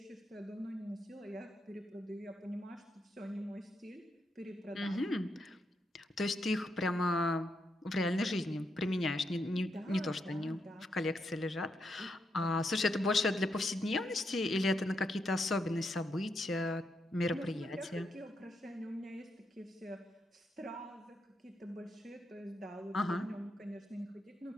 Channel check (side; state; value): both; normal; correlation 0.81